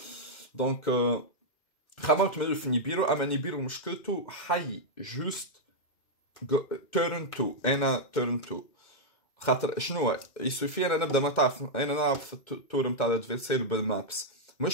دونك خممت من في نيبيرو، اما نيبيرو مشكلته حي جوست تيرن 2 انا تيرن 2 خاطر شنو يسوفي انا نبدا ما تعرف انا نلعب في التور نتاع الادفيرسير بالمابس.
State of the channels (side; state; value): right; late; 2.2 ms